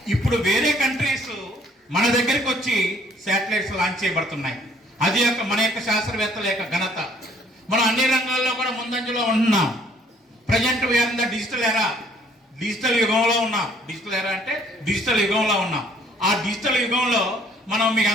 ఇప్పుడు వేరే కంట్రీస్ మన దగ్గరికి వచ్చి శాటిలైట్స్ లాంచ్ చేయబడుతున్నాయి. అది మన యొక్క శాస్త్రవేత్తల యొక్క ఘనత. మనం అన్ని రంగాల్లో కూడా ముందంజలో ఉంటున్నాం. Present we are in the digital era. Digital యుగంలో ఉన్నాం. డిజిటల్ ఎరా అంటే డిజిటల్ యుగంలో ఉన్నాం. ఆ డిజిటల్ యుగంలో మనం మీకు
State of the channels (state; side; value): normal; both; correlation 0.61